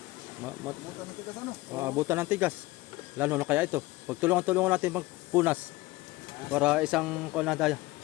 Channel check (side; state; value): right; quieter; 20.1 dB